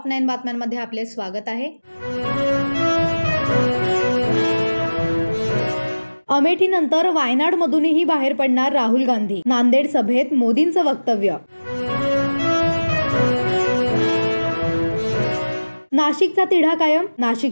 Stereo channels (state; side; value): inverted; both; correlation -1.00